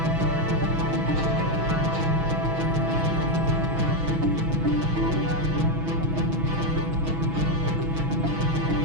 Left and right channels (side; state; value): left; late; 6.1 ms